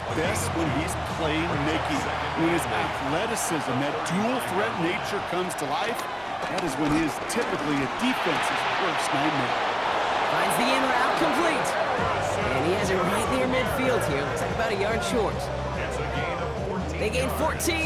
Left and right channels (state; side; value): identical; both; correlation 1.00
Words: best when he's playmaking. When his athleticism, that dual threat nature comes to life, that is when he is typically a defense's worst nightmare. Finds the in route complete. And he has it right near midfield here. Looks like about a yard short. They gain